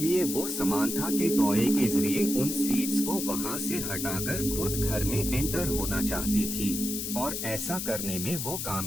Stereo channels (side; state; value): left; noise; hiss, 4 dB below the sound